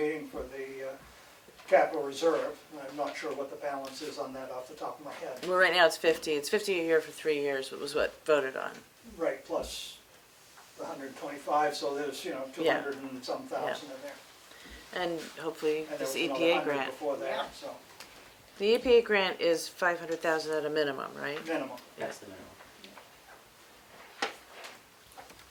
for the capital reserve. I'm not sure what the balance is on that off the top of my head. Well, right now it's 50 a year for 3 years, was what voted on. Right, plus the 125, so there's, Yeah. 200 and some thousand in there. And hopefully And there this was another EPA 100 grant. before Yeah. that, so The EPA grant is 500,000 at a minimum, right? minimum. That's the minimum.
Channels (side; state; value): both; identical; correlation 1.00